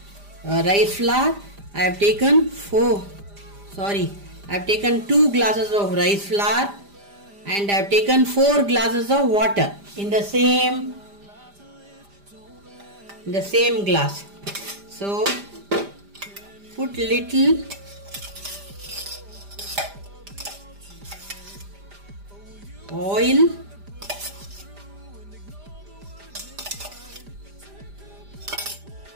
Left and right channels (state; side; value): late; left; 5.0 ms